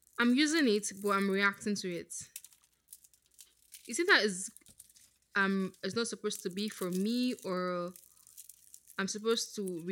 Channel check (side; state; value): both; identical; correlation 1.00